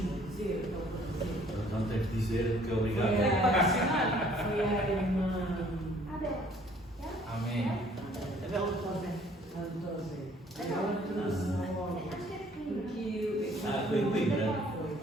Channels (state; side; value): normal; both; correlation 0.58